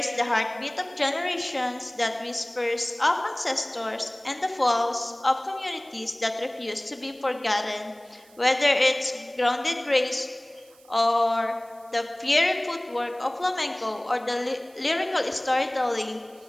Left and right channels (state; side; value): noise; right; hiss, 27 dB below the sound